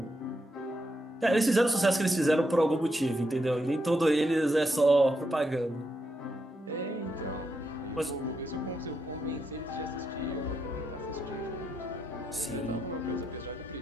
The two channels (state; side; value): normal; both; correlation 0.82